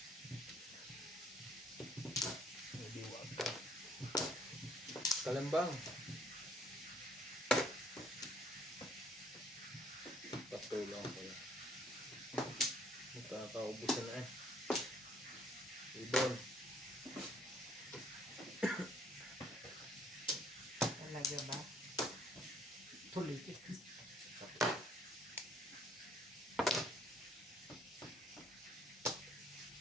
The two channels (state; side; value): normal; both; correlation 0.62